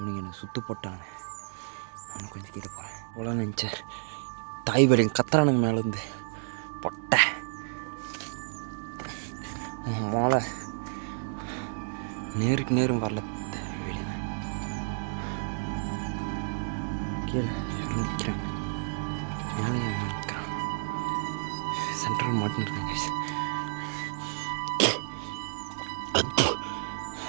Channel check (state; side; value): silent; left; digital silence